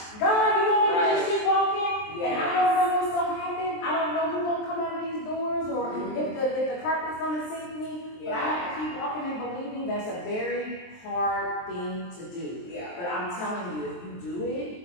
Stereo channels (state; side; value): late; right; 23 ms